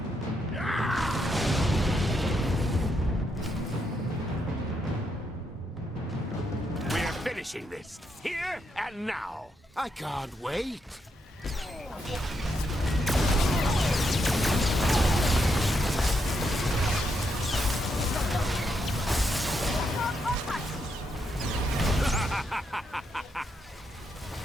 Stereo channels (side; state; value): both; normal; correlation 0.80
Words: We're finishing this, here and now. I can't wait.